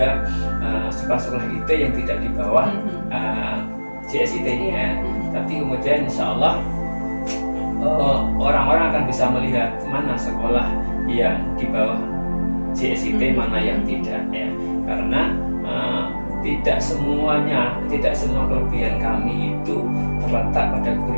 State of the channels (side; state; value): both; inverted; correlation -1.00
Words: sekolah-sekolah IT yang tidak di bawah JSIT ya. Tapi kemudian insya Allah orang-orang akan bisa melihat mana sekolah yang di bawah JSIT, mana yang tidak ya. Karena tidak semua kelebihan kami itu terletak pada